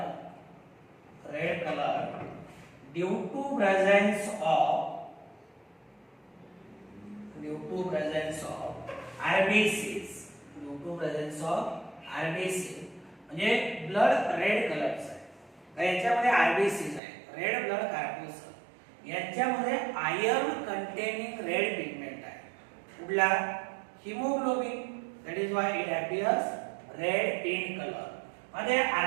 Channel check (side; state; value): left; drops out; at 17.0 s